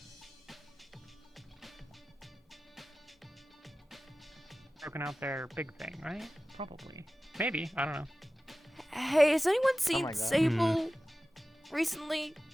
Broken out their big thing, right? Probably. Maybe. I don't know. Hey, has anyone seen Sable recently?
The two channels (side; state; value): both; normal; correlation 0.96